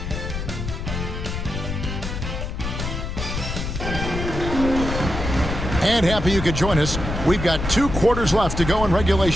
And happy you could join us. We've got 2 quarters left to go in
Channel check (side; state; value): left; noise; rumble, 4 dB below the sound